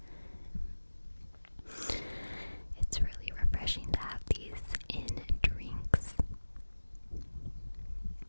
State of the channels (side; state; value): both; inverted; correlation -1.00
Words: It's really refreshing to have these in drinks.